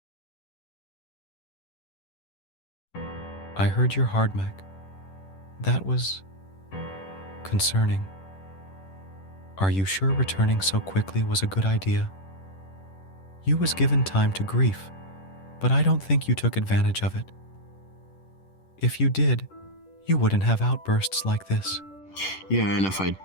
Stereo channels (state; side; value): late; right; 10 ms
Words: I heard your hard Mac. That was concerning. Are you sure returning so quickly was a good idea? You was given time to grief, but I don't think you took advantage of it. If you did, you wouldn't have outbursts like this. Yeah, and if I